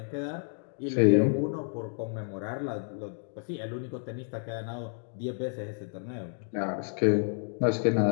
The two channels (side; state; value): right; silent; 58 dB below the other